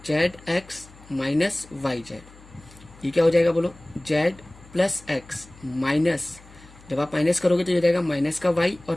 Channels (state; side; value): noise; left; hum, 23 dB below the sound